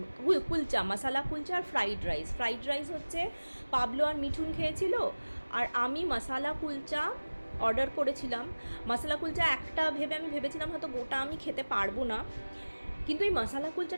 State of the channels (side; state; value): both; inverted; correlation -1.00